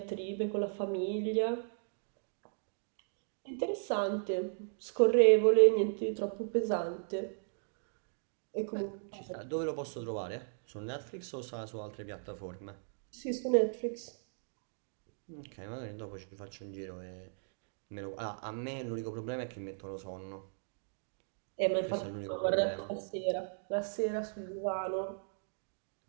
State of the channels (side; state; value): left; silent; digital silence